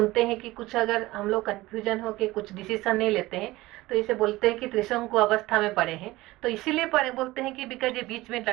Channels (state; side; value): quieter; left; 18.8 dB